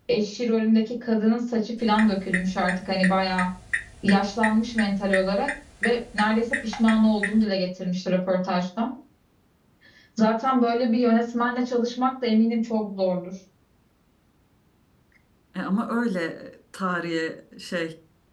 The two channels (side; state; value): both; identical; correlation 1.00